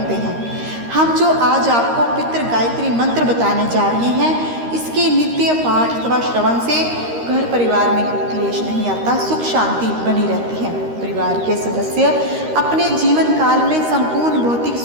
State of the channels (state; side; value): late; left; 13 ms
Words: हैं। हम जो आज आपको पितृ गायत्री मंत्र बताने जा रहे हैं, इसके नित्य पाठ अथवा श्रवण से घर परिवार में क्लेश नहीं आता, सुख शांति बनी रहती है। परिवार के सदस्य अपने जीवन काल में संपूर्ण भौतिक